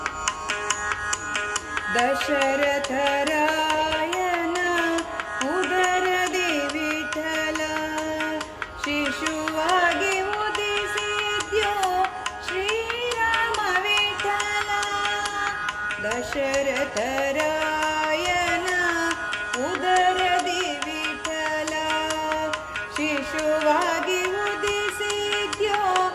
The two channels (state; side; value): identical; both; correlation 1.00